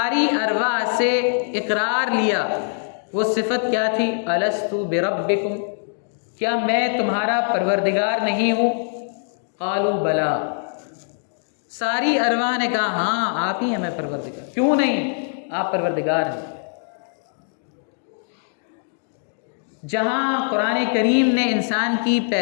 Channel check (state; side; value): silent; right; digital silence